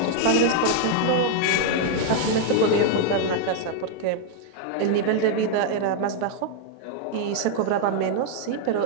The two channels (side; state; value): both; different; correlation 0.00